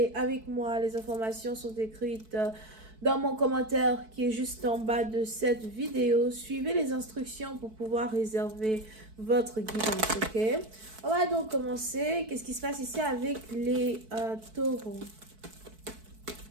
avec moi, les informations sont écrites dans mon commentaire qui est juste en bas de cette vidéo. Suivez les instructions pour pouvoir réserver votre guidance, ok? On va donc commencer. Qu'est-ce qui se passe ici avec les taureaux?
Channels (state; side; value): late; left; 4.6 ms